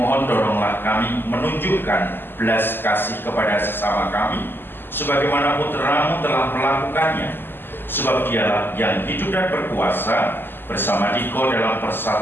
tolonglah kami menunjukkan belas kasih kepada sesama kami, sebagaimana Putramu telah melakukannya, sebab Dialah yang hidup dan berkuasa bersama Dikau dalam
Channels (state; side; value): late; right; 0.098 ms